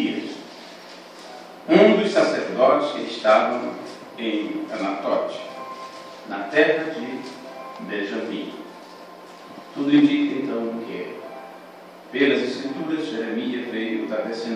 um dos sacerdotes que estavam em Anatote, na terra de Benjamim. Tudo indica então que, pelas Escrituras, Jeremias veio da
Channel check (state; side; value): identical; both; correlation 1.00